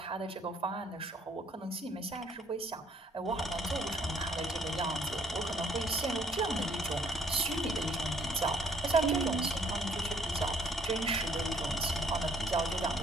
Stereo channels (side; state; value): both; normal; correlation 0.63